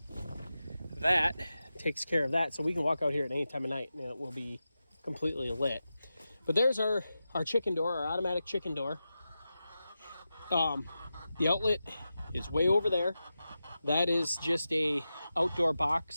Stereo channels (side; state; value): both; inverted; correlation -0.92